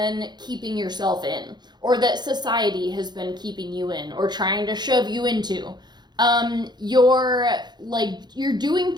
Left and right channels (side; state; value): left; late; 0.21 ms